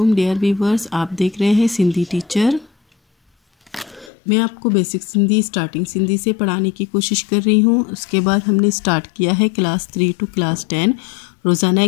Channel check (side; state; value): right; drops out; at 4.1 s